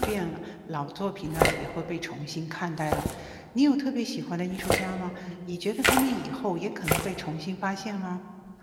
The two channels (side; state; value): both; identical; correlation 1.00